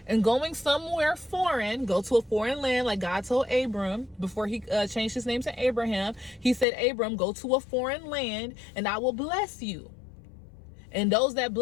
and going somewhere foreign, go to a foreign land, like God told Abram before he changed his name to Abraham. He said, Abram, go to a foreign land and I will bless you. And those that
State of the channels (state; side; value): drops out; right; at 6.7 s